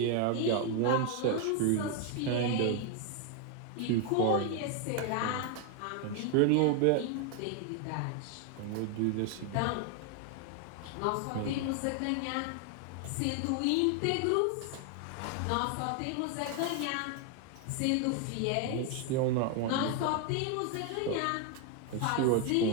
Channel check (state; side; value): different; both; correlation 0.01